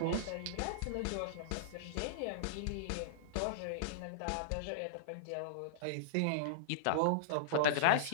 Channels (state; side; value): different; both; correlation -0.03